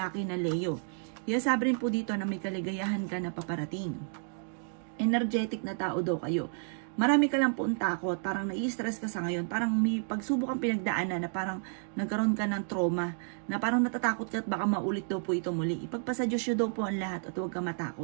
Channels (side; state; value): left; silent; 57 dB below the other